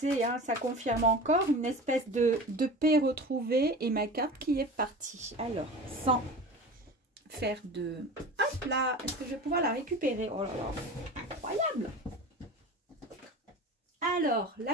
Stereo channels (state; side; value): normal; both; correlation 0.34